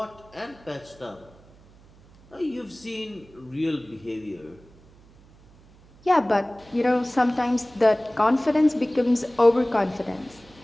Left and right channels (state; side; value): noise; right; hum, 26 dB below the sound